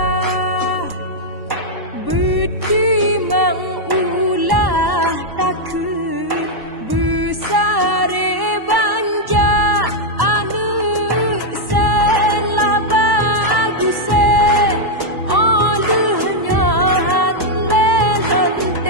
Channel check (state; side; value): late; left; 1.1 ms